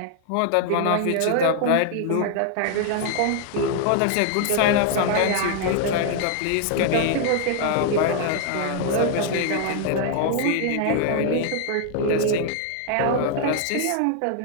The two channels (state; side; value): different; both; correlation 0.00